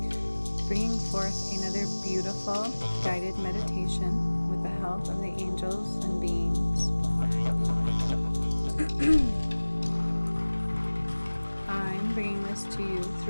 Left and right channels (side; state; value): both; inverted; correlation -1.00